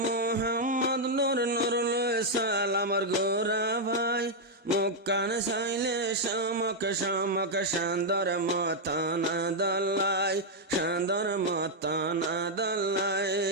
মোহাম্মদ নূর নুরুল সালামর গোরা ভাই মুক্কান সাইলে শামক শামক শান্দর মতানা দল্লাই শান্দর মতানা দল্লাই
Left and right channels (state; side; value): normal; both; correlation -0.03